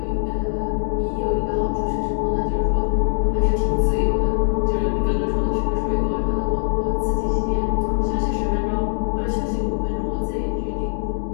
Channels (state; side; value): silent; right; digital silence